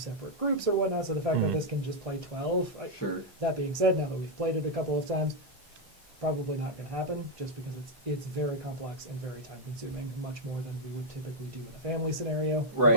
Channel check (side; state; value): both; normal; correlation -0.03